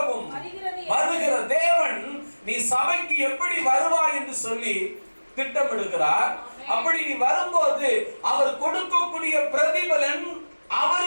வருகிற தேவன். நீ சபைக்கு எப்படி வருவாய் என்று சொல்லி திட்டமிடுகிறார். அப்படி நீ வரும்போது அவர் கொடுக்கக்கூடிய பிரதிபலன்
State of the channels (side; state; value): both; inverted; correlation -1.00